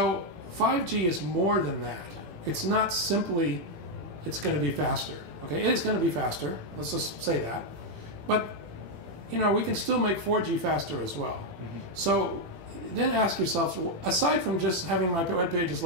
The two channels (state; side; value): late; left; 18 ms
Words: 5G is more than that. It's not simply it's going to be faster. Okay, it is going to be faster. Let's just say that. But we can still make 4G faster as well. Mm-hmm. So then ask yourself, aside from just having my web pages